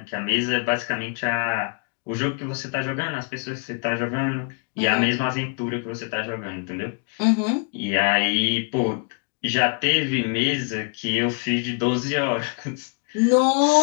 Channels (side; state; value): right; quieter; 39.1 dB